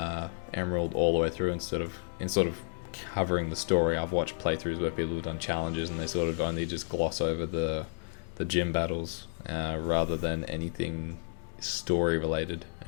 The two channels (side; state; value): right; silent; digital silence